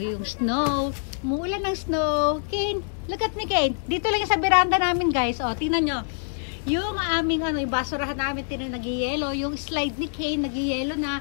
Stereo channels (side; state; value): right; silent; digital silence